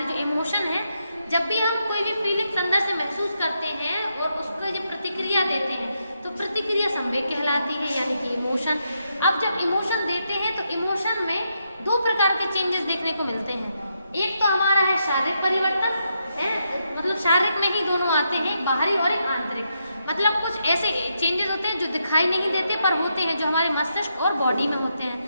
जो इमोशन है, जब भी हम कोई भी फीलिंग्स अंदर से महसूस करते हैं और उसको जब प्रतिक्रिया देते हैं तो प्रतिक्रिया संवेग कहलाती है, यानी कि इमोशन। अब जब इमोशन देते हैं तो इमोशन में दो प्रकार के चेंजेस देखने को मिलते हैं। एक तो हमारा है शारीरिक परिवर्तन है, मतलब शारीरिक में ही दोनों आते हैं, बाहरी और एक आंतरिक। मतलब कुछ ऐसे चेंजेस होते हैं जो दिखाई नहीं देते पर होते हैं, जो हमारे मस्तिष्क और बॉडी में होते हैं,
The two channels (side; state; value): both; inverted; correlation -0.81